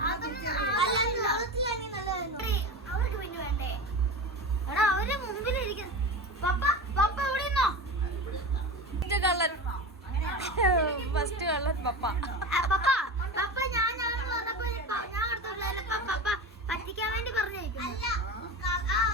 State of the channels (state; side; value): normal; both; correlation 0.26